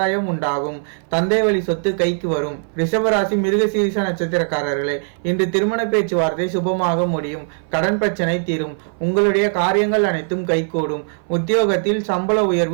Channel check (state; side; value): silent; left; 59 dB below the other